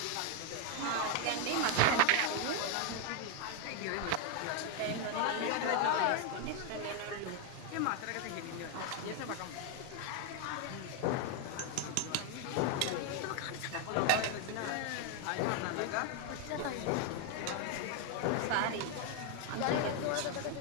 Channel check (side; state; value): both; different; correlation 0.01